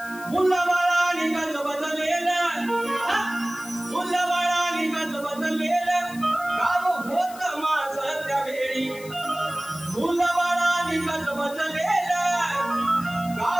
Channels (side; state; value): left; noise; hiss, 17 dB below the sound